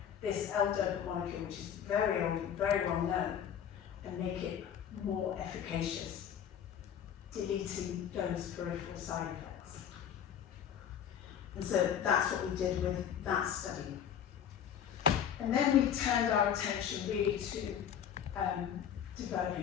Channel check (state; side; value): quieter; right; 9.0 dB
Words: this L-DOPA molecule, which is very old, very well known, and make it more efficacious, deleting those peripheral side effects. And so that's what we did with that study. And then we turned our attention really to